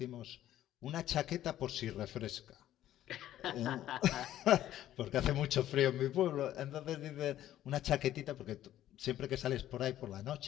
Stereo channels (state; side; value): quieter; right; 12.7 dB